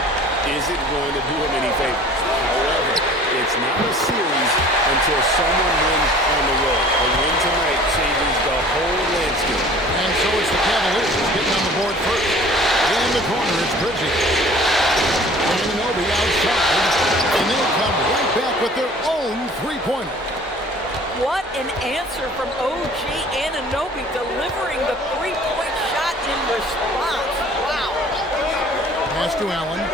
isn't going to do them any favors. However, it's not a series until someone wins on the road. A win tonight changes the whole landscape. And so it's the Cavaliers getting on the board first. In the corner, it's Bridges. Anunoby outside. And they'll come right back with their own three-pointer. What an answer from OG Anunoby, delivering the three-point shot in response. Wow. Pass to Allen.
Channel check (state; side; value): normal; both; correlation 0.48